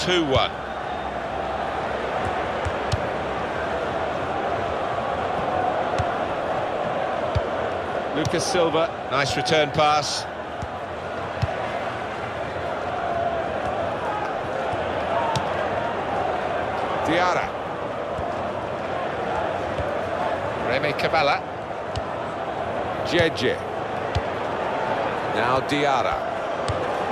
Lucas Silva, nice return pass. Diarra. Remy Cabella. Jeje. Now Diarra.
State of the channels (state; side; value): identical; both; correlation 1.00